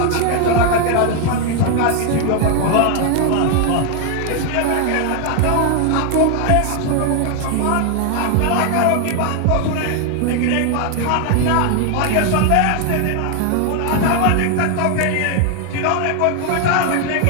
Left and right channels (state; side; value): different; both; correlation 0.00